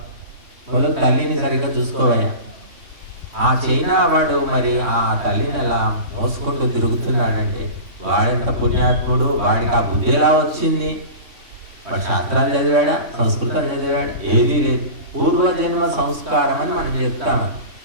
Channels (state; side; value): late; left; 3.6 ms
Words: మొదలు తల్లిని సరిగ్గా చూసుకోవయ్యా. ఆ చైనా వాడు మరి ఆ తల్లిని అలా మోసుకుంటూ తిరుగుతున్నాడంటే వాడెంత పుణ్యాత్ముడు, వాడికి ఆ బుద్ధి ఎలా వచ్చింది? వాడు శాస్త్రాలు చదివాడా, సంస్కృతం చదివాడా? ఏది లేదు. పూర్వజన్మ సంస్కారం అని మనం చెప్తాము.